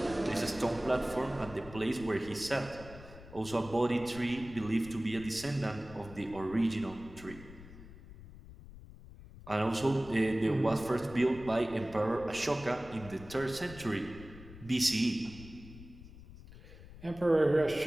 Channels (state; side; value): noise; left; rumble, 17 dB below the sound